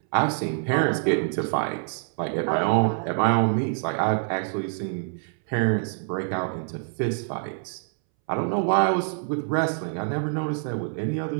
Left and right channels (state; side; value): silent; left; 61 dB below the other